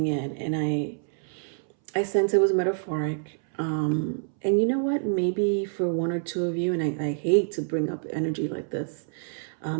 in, and I sense it was metaphoric. And you know what? Maybe for 1 or 2 of you, and I hate to bring up energy like this,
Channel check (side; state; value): left; silent; 60 dB below the other